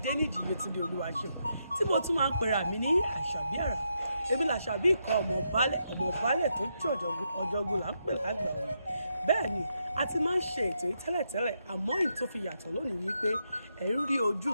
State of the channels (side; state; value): both; inverted; correlation -0.82